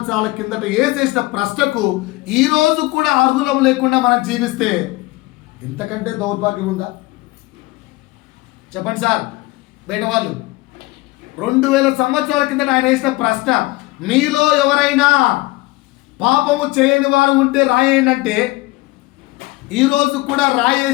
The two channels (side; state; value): right; quieter; 20.9 dB